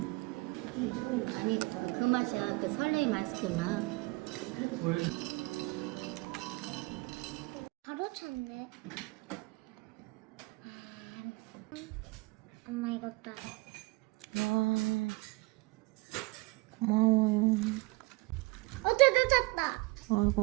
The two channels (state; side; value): quieter; left; 24.3 dB